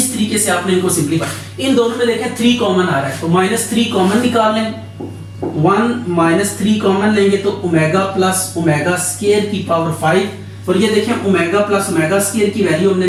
तरीके से आपने इनको सिंपलीफाई, इन दोनों में देखें 3 कॉमन आ रहा है, तो -3 कॉमन निकाल लें, 1 माइनस 3 कॉमन लेंगे तो ओमेगा प्लस ओमेगा स्क्वायर की पावर 5, और ये देखें ओमेगा प्लस ओमेगा स्क्वायर की वैल्यू हमने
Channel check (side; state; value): both; identical; correlation 1.00